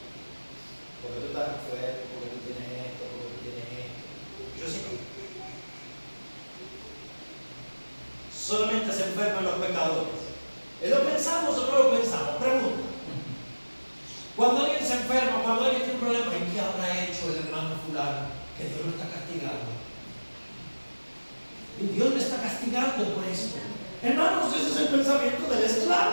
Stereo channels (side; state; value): both; inverted; correlation -1.00